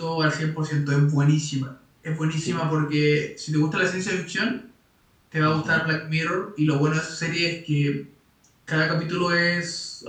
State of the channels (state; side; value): identical; both; correlation 1.00